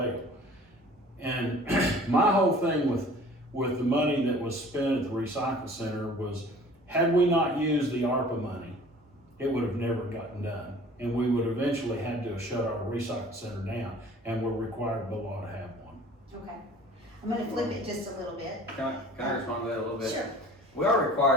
And my whole thing with the money that was spent at the recycle center was, had we not used the ARPA money, it would have never gotten done. And we would eventually had to shut our recycle center down, and we're required by law to have one. Okay. I'm gonna flip it just a little bit. Can I respond to that a little bit? Sure. We are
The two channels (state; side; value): normal; both; correlation 0.48